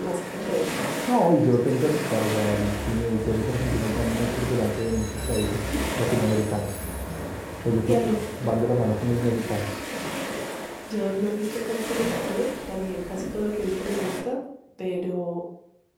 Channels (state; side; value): identical; both; correlation 1.00